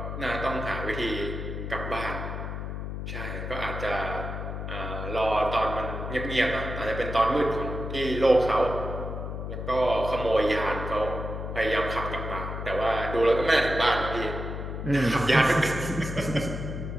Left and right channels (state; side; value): noise; left; hum, 6 dB below the sound